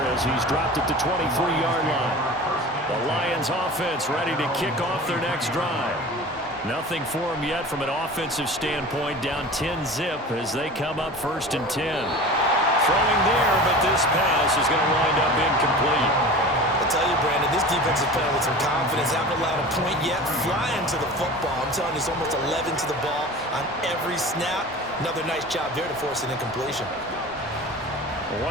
as he's dropped it to 23-yard line. The Lions offense ready to kick off their next drive. Nothing for them yet from an offensive standpoint, down 10-zip as they come up 1st and 10. Throwing there, but this pass is going to wind up incomplete. I tell you, Brandon, this defense is playing with some confidence. Haven't allowed a point yet. Flying to the football. I'm telling you, it's almost 11 to the ball on every snap. Another nice job there to force an incompletion.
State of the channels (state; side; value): normal; both; correlation 0.36